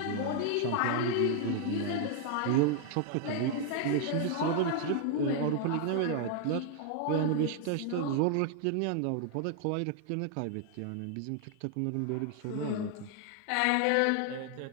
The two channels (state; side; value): different; both; correlation 0.00